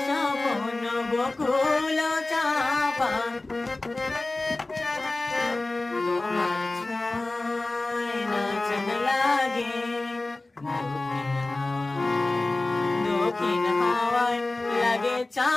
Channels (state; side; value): quieter; right; 3.0 dB